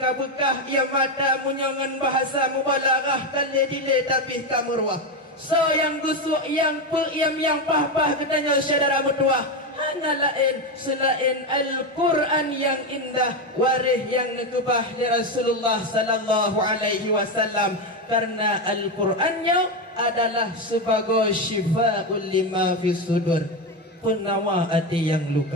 ia mata punya dengan bahasa mubalaghah kali dile tapi kamurwah. So yang gusuk yang yang pah-pah katanya saudara mutuah. Hanya lain selain Al-Quran yang indah, waris yang nekebah dari Rasulullah sallallahu alaihi wasallam, karena Al-Qurannya adalah sebagai syifa'ul lima fis sudur, penawa hati yang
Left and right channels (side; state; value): both; normal; correlation 0.12